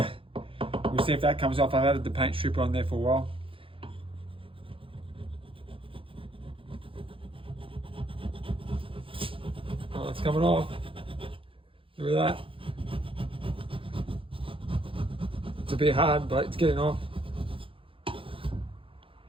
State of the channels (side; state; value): left; late; 0.26 ms